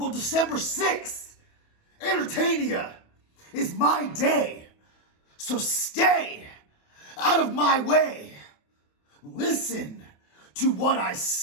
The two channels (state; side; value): late; right; 28 ms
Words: December 6th, Entertainia is my day. So stay out of my way. Listen to what I